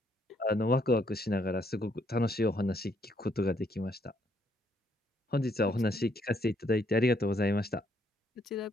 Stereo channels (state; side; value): normal; both; correlation 0.71